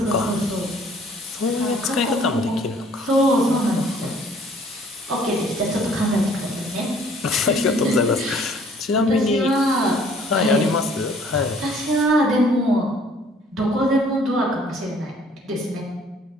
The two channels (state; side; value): normal; both; correlation 0.57